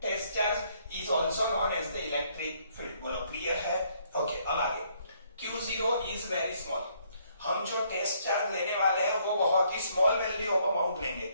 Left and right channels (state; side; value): inverted; both; correlation -0.68